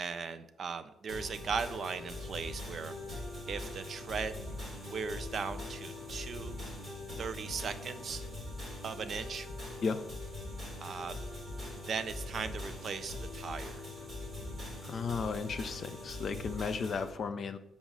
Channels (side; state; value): both; normal; correlation 0.75